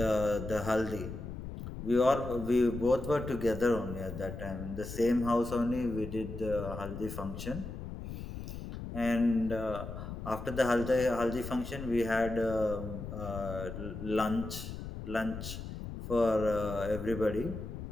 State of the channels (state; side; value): noise; left; rumble, 8 dB below the sound